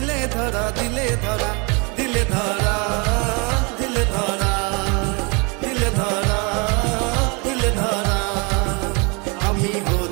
ধরা দিলে ধরা দিলে ধরা দিলে ধরা দিলে ধরা দিলে ধরা আমি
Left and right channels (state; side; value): quieter; left; 30.9 dB